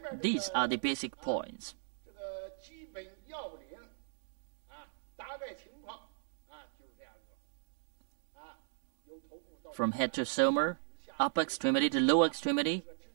These are the basic points. From head to somer, upper extremity to lower extremity,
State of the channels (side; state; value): left; silent; digital silence